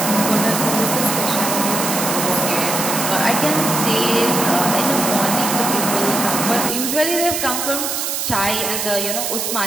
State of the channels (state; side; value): noise; right; hiss, 2 dB below the sound